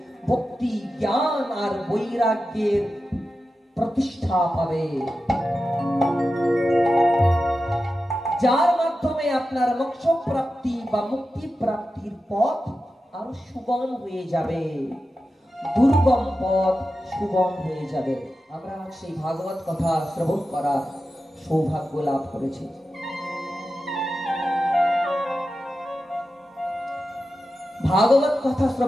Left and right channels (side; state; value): both; normal; correlation 0.92